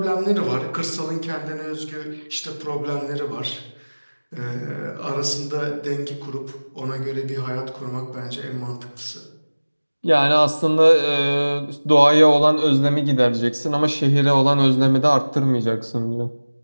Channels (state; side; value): inverted; both; correlation -1.00